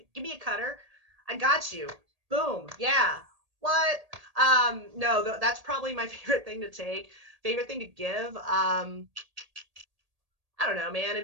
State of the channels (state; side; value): late; left; 1.8 ms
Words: me a cutter. I got you. Boom. Yeah. What? No, that's probably my favorite thing to take. Favorite thing to give. I don't know, man. It'd